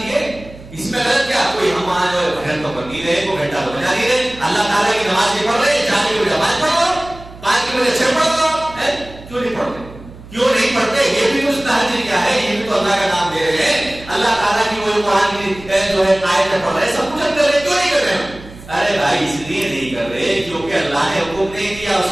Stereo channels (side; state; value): right; noise; hum, 18 dB below the sound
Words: ہے. اس میں غلط کیا کوئی ہم وہاں جو ہے بھجن تو کر نہیں رہے کوئی گھنٹہ تو بجا نہیں رہے اللہ تعالیٰ کی نماز نہیں پڑھ رہے 4 کی بجائے 5 پڑھ لو 5 کی بجائے 6 پڑھ لو. کیوں نہیں پڑھتے؟ کیوں نہیں پڑھتے؟ یہ بھی کچھ تہجد کیا ہے یہ بھی تو اللہ کا نام لے رہے ہیں اللہ تعالیٰ کی وہ قرآن کی جو ہے آیتیں پڑھ رہے ہیں سب کچھ ہم کر رہے ہیں. کیوں نہیں کر رہے ہیں؟ ارے بھائی اس لیے نہیں کر رہے کیونکہ اللہ نے حکم نہیں دیا